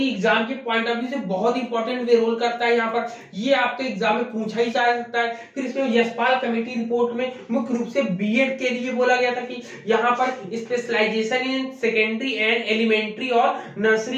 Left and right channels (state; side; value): identical; both; correlation 1.00